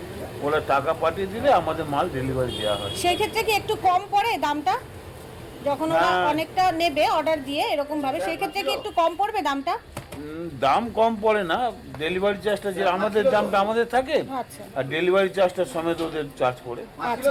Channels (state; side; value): identical; both; correlation 1.00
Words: ওরা টাকা পাঠিয়ে দিলে আমাদের মাল ডেলিভারি দেওয়া হয়। সেই ক্ষেত্রে কি একটু কম পড়ে দামটা, যখন ওরা অনেকটা নেবে অর্ডার দিয়ে এরকম ভাবে, সেই ক্ষেত্রে কি একটু কম পড়বে দামটা? দাম কম পড়ে না, ডেলিভারি চার্জটা যে আমাদের দামটা আমাদের থাকে, আর ডেলিভারি চার্জটা সমেত ওদের চার্জ পড়ে। আচ্ছা,